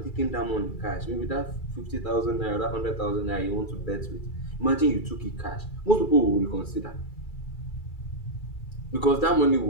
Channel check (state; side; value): late; right; 2.3 ms